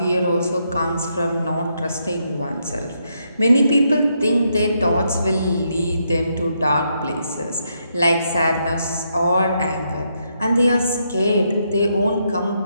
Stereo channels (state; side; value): inverted; both; correlation -0.78